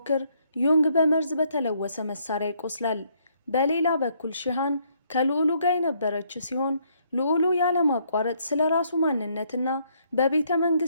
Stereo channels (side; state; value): both; inverted; correlation -0.69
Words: ዩንግ በመርዝ በተለወሰ መሳሪያ ይቆስላል። በሌላ በኩል ሺሃን ከልዑሉ ጋር የነበረች ሲሆን ልዑሉ ያለማቋረጥ ስለ ራሱ ማንነትና በቤተ